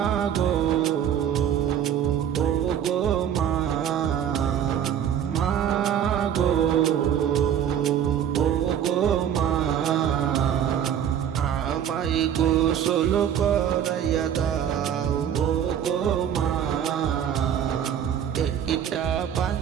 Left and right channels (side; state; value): left; quieter; 9.3 dB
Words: ও গো মা, মাগো ও গো মা, আমায় গোসল করাইয়া দাও ও গো মা, একটা